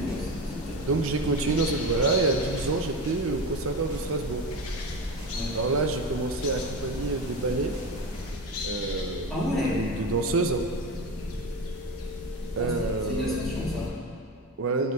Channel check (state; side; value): normal; both; correlation 0.23